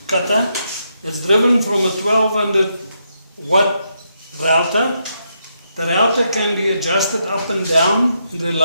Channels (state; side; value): inverted; both; correlation -0.80